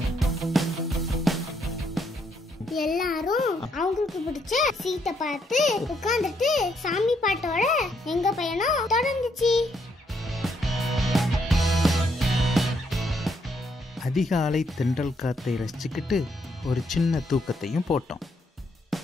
எல்லாரும் அவங்களுக்கு பிடிச்ச சீட்டை பார்த்து உட்கார்ந்துட்டு சாமி பாட்டோட எங்க பயணம் தொடர்ந்துச்சு. அதிகாலை தென்றல் காத்தை ரசிச்சுக்கிட்டு ஒரு சின்ன தூக்கத்தையும் போட்டோம்.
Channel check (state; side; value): normal; both; correlation 0.74